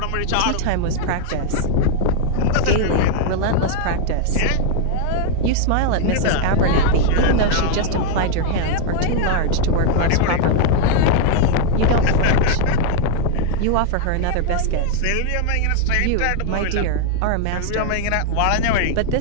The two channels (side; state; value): both; different; correlation 0.00